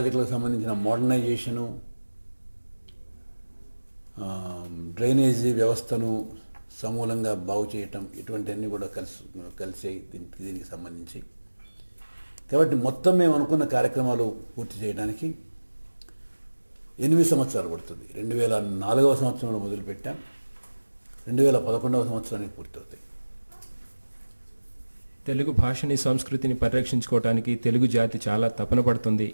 సంబంధించిన మోడర్నైజేషను, డ్రైనేజీ వ్యవస్థను సమూలంగా బాగు చేయటం, ఇటువంటివన్నీ కూడా కలిసి దీనికి సంబంధించి. కాబట్టి మొత్తం మేము అనుకున్న కార్యక్రమాలు పూర్తి చేయడానికి 8 సంవత్సరాలు పడుతుంది. 2004వ సంవత్సరంలో మొదలుపెట్టాం. 2011వ సంవత్సరానికి పూర్తవుతాయి. తెలుగు భాషని సంస్కృతిని పరిరక్షించుకోవడానికి తెలుగు జాతి చాలా తపన పడుతుంది.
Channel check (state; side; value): inverted; both; correlation -1.00